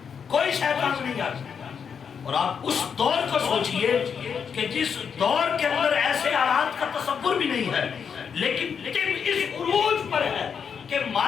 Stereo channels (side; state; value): right; quieter; 6.8 dB